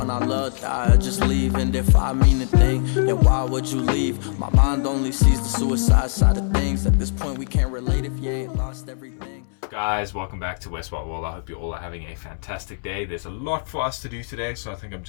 I love die or just leave? And if I mean a thing, then why would you leave? My mind only sees the suicide side of things. At this point we can't relate if you ain't lost everything. Guys, welcome back to Westward World. I hope you all are having a fantastic day. There's a lot for us to do today, so I think I'm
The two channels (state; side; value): silent; right; 64 dB below the other